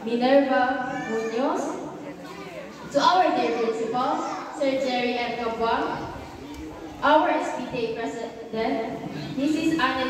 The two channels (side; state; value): both; identical; correlation 1.00